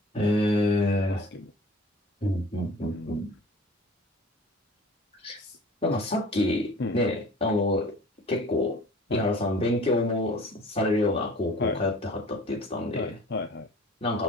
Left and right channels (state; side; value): normal; both; correlation 0.45